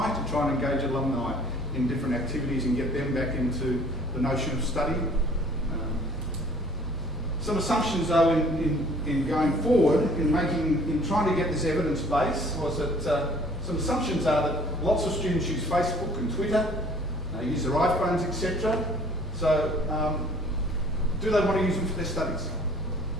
to try and engage alumni in different activities and get them back into the notion of study. Some assumptions though in going forward, in trying to get this evidence base, was that some assumptions are that lots of students use Facebook and Twitter, use their iPhones, etc. So, do they want to use them for their studies?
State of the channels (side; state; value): both; normal; correlation 0.54